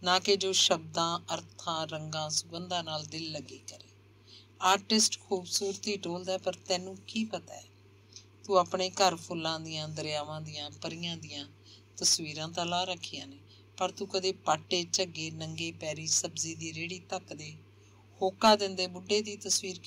ਨਾ ਕਿ ਜੋ ਸ਼ਬਦਾਂ, ਅਰਥਾਂ, ਰੰਗਾਂ, ਸੁਗੰਧਾਂ ਨਾਲ ਦਿਲ ਲੱਗੀ ਕਰੇ। ਆਰਟਿਸਟ ਖੂਬਸੂਰਤੀ ਟੋਲਦਾ, ਪਰ ਤੈਨੂੰ ਕੀ ਪਤਾ ਹੈ? ਤੂੰ ਆਪਣੇ ਘਰ ਫੁੱਲਾਂ ਦੀਆਂ, ਦਰਿਆਵਾਂ ਦੀਆਂ, ਪਰੀਆਂ ਦੀਆਂ ਤਸਵੀਰਾਂ ਤਾਂ ਲਾ ਰੱਖੀਆਂ ਨੇ, ਪਰ ਤੂੰ ਕਦੇ ਪਾਟੇ, ਝੱਗੇ, ਨੰਗੇ ਪੈਰੀ ਸਬਜ਼ੀ ਦੀ ਰੇਹੜੀ ਧੱਕਦੇ, ਹੋਕਾ ਦਿੰਦੇ ਬੁੱਢੇ ਦੀ ਤਸਵੀਰ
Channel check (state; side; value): identical; both; correlation 1.00